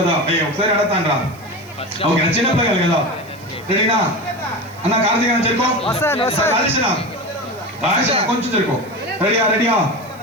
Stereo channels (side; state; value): right; noise; hiss, 26 dB below the sound